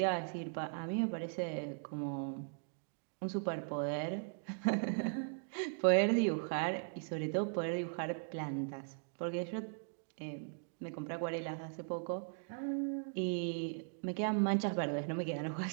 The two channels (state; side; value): silent; left; digital silence